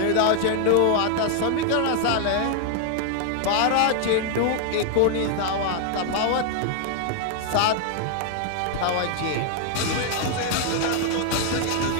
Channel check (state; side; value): different; both; correlation 0.00